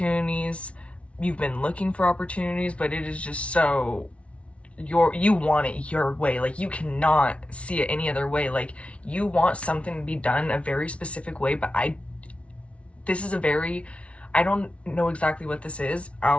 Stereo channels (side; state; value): right; late; 0.062 ms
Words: you've been looking for opportunities, but it is just so you want it your way. Like, you cannot see it any other way. Like, you want something to be done a very specific way, but this is a very, I don't know exactly what this is.